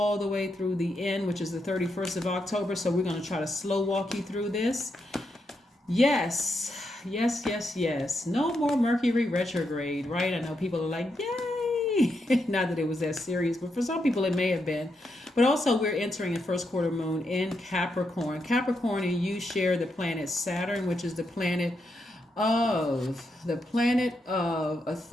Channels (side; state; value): both; normal; correlation 0.82